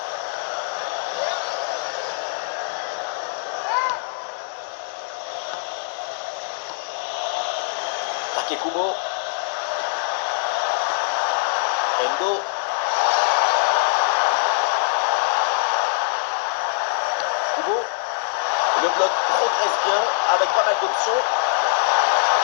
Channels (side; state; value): right; silent; digital silence